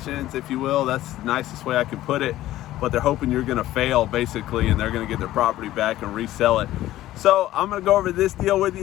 if you will. That's the nicest way I can put it. But they're hoping you're gonna fail, basically, and they're gonna get their property back and resell it. So I'm gonna go over this deal with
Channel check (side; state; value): right; quieter; 14.8 dB